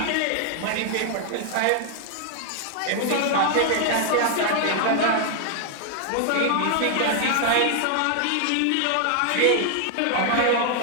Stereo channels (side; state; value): both; different; correlation 0.00